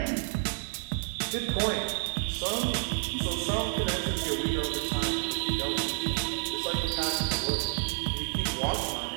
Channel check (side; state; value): left; silent; digital silence